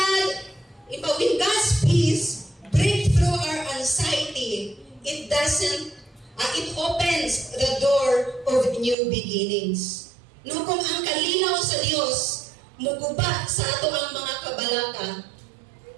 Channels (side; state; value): left; drops out; at 9.0 s